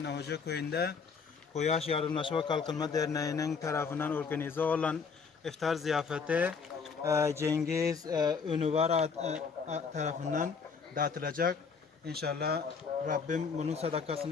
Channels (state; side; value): quieter; right; 5.5 dB